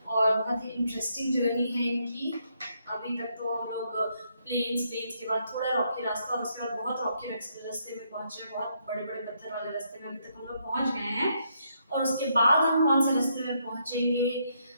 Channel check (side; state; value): both; inverted; correlation -0.75